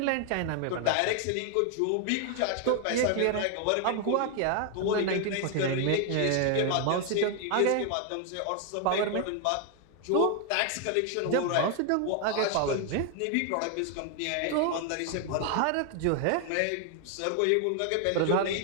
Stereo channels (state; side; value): different; both; correlation 0.00